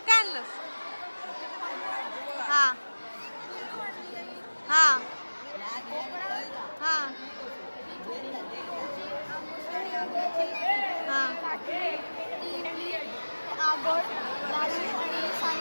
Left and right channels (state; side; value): inverted; both; correlation -1.00